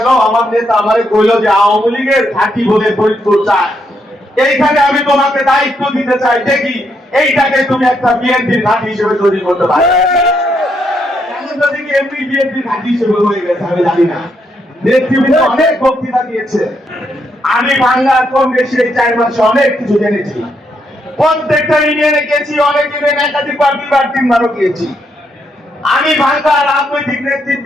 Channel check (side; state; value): both; normal; correlation 0.77